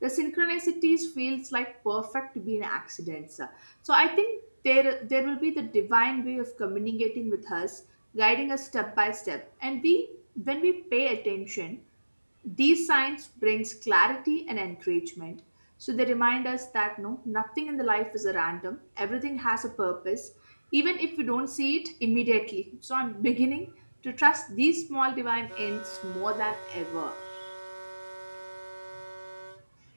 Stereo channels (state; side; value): inverted; both; correlation -1.00